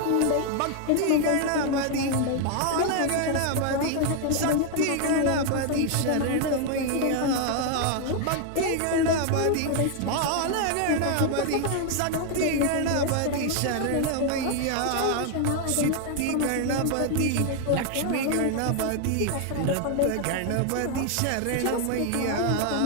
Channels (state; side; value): different; both; correlation 0.00